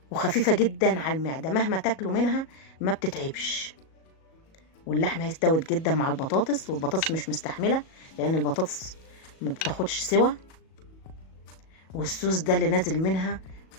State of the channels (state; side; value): late; right; 37 ms